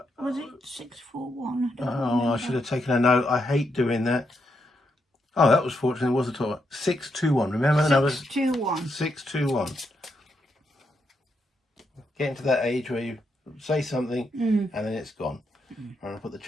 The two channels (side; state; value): both; normal; correlation 0.81